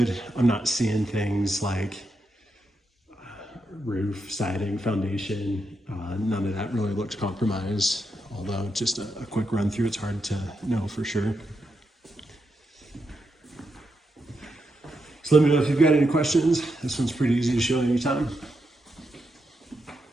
I'm not seeing things like roof, siding, foundation. None of that really looks compromised. Although just a quick run through, it's hard to know for sure. So let me know if you've got any questions. This one's pretty easy to show anytime.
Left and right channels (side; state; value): both; normal; correlation 0.84